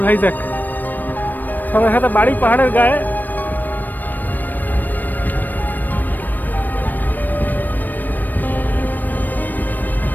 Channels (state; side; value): late; right; 0.088 ms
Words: ভাইজ্যাক, সবার সাথে বাড়ি পাহাড়ের গায়ে।